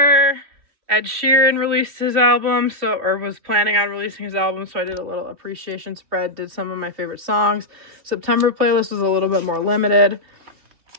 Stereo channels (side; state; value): left; late; 2.9 ms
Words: Ed Sheeran released his album, or was planning on releasing his album, so I did a little appreciation spread, did some of my favorite songs. September playlist was a little bit more limited.